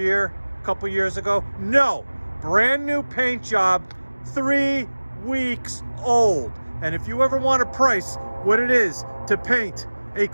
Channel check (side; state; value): both; inverted; correlation -1.00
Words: A couple years ago? No. Brand new paint job, 3 weeks old. And if you ever want to price what it is to paint a